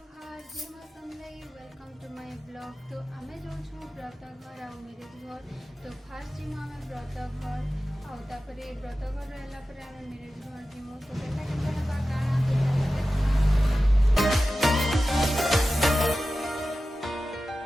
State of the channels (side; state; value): both; normal; correlation 0.94